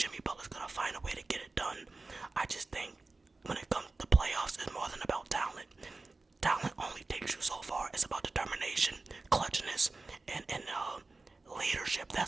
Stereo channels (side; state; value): left; quieter; 3.5 dB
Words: Butler's going to find a way to get it done. I just think when it comes to playoffs, it's more than about talent. Talent only takes you so far. It's about determination, clutchness, and leadership.